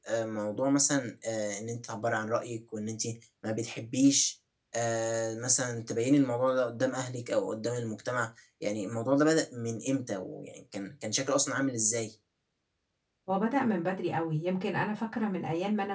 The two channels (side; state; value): both; identical; correlation 1.00